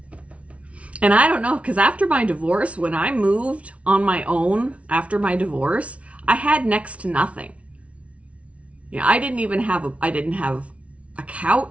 And I don't know, because after my divorce, when I moved on my own after my divorce, I had next to nothing. Yeah, I didn't have a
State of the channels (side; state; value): left; late; 0.063 ms